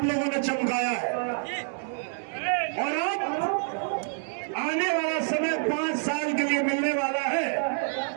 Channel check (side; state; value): left; silent; 60 dB below the other